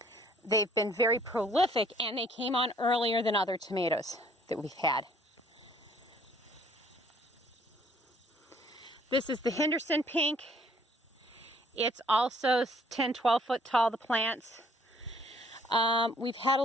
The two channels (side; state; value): both; normal; correlation 0.60